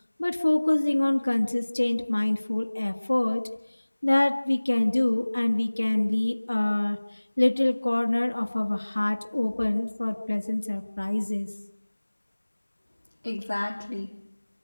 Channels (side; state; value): both; inverted; correlation -1.00